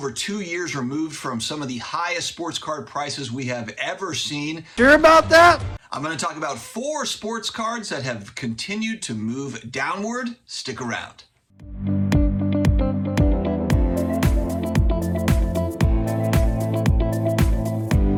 2 years removed from some of the highest sports card prices we have ever seen. Sure about that? I'm going to talk about 4 sports cards that have continued to move downward. Stick around.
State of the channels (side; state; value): both; identical; correlation 1.00